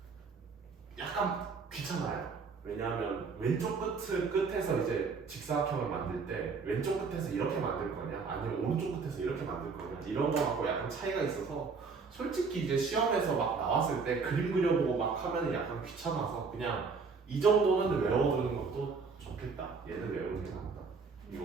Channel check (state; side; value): quieter; left; 4.9 dB